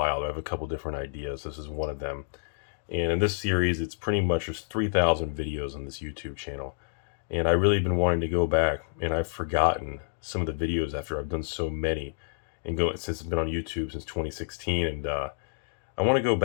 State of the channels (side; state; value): right; silent; 59 dB below the other